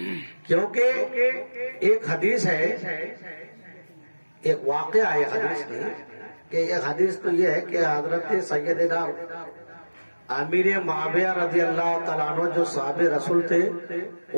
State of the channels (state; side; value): inverted; both; correlation -1.00